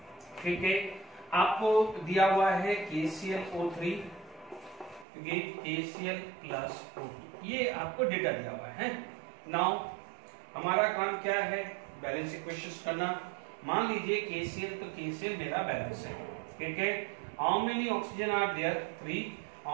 ठीक है, आपको दिया हुआ है KClO3 KCl प्लस O2, ये आपको डेटा दिया हुआ है. नाउ हमारा काम क्या है? बैलेंस इक्वेशंस करना. मान लीजिए KCl, तो KCl मेरा बैलेंस है. ठीक है, how many oxygen are there? 3.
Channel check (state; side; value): drops out; left; at 5.1 s